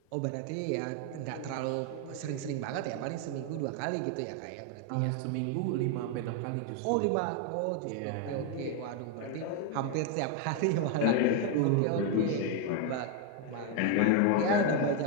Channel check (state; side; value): different; both; correlation 0.01